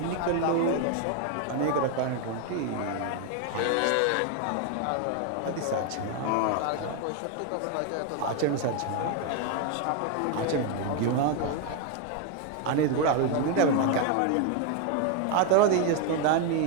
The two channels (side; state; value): both; different; correlation 0.01